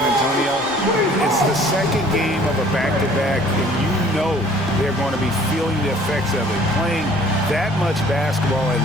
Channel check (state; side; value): normal; both; correlation 0.54